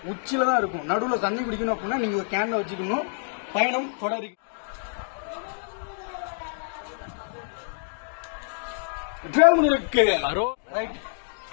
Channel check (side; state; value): right; silent; digital silence